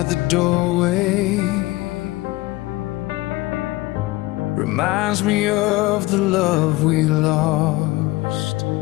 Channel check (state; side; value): quieter; right; 19.6 dB